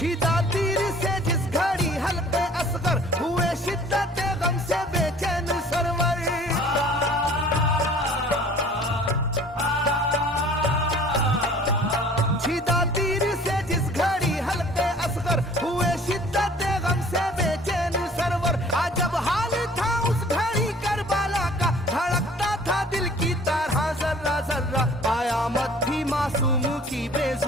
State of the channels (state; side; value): normal; both; correlation 0.50